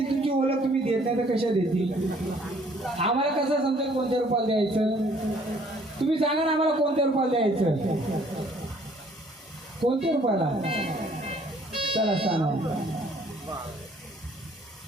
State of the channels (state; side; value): normal; both; correlation 0.60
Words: तुमची ओळख तुम्ही देत नाही तर कशा देतील? आम्हाला कसं समजेल कोणत्या रूपाला द्यायचं? तुम्ही सांगा ना आम्हाला कोणत्या रूपाला द्यायचं? कोणत्या रूपाला? चला स्थानावर.